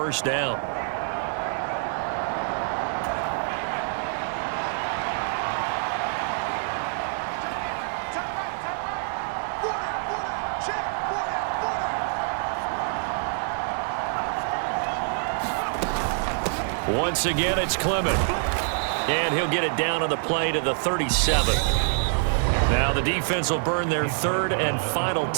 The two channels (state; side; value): silent; left; 61 dB below the other